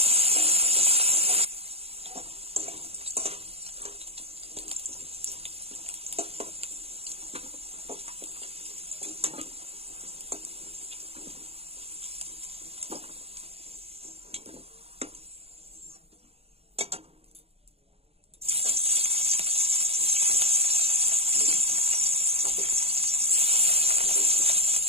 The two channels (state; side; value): late; left; 0.29 ms